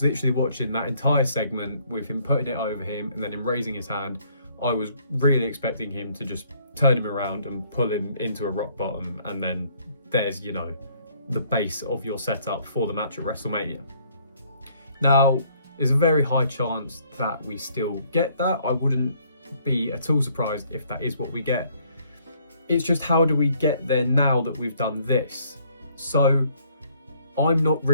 literally watching that entire segment with him putting it over him and then him raising his hand. I was really expecting him to just turn him around and pull him into a rock bottom, and then there's, the base of your setup for the match at WrestleMania. Now, there's a very high chance that we still get that. I wouldn't be at all surprised if that is what we get. It's just, how do we get there now that we've done this? So I'm not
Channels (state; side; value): inverted; both; correlation -0.64